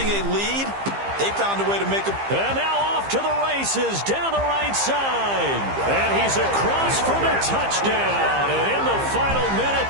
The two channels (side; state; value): left; late; 15 ms